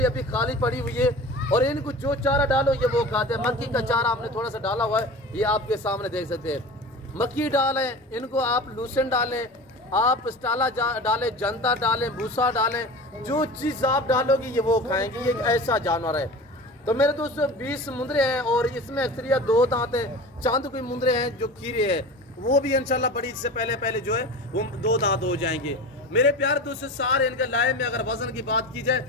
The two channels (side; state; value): both; normal; correlation 0.34